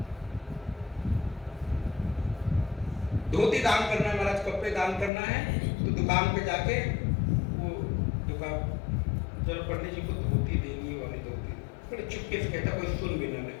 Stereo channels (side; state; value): right; drops out; at 5.1 s